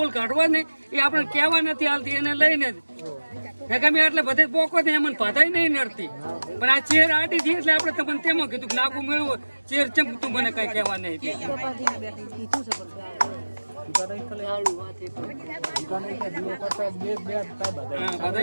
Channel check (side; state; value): both; inverted; correlation -1.00